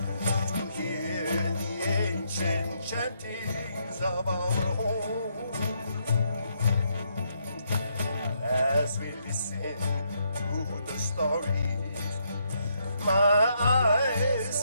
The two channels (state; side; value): inverted; both; correlation -0.76